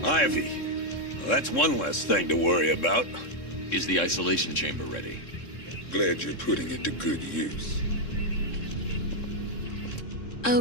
Ivy. Well, that's one less thing to worry about. Is the isolation chamber ready? Glad you're putting it to good use.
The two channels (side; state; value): right; late; 3.6 ms